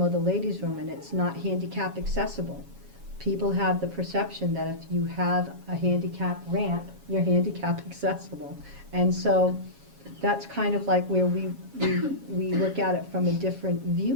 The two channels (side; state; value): left; late; 7.2 ms